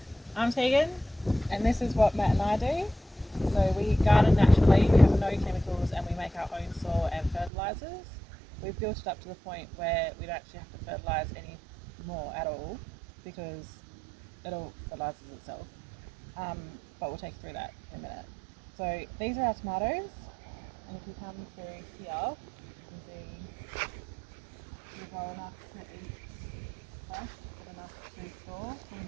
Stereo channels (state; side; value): drops out; left; at 7.5 s